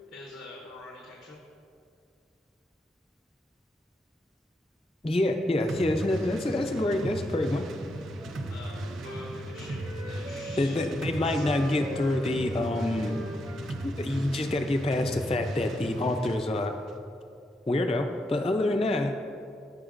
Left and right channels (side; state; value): both; normal; correlation 0.81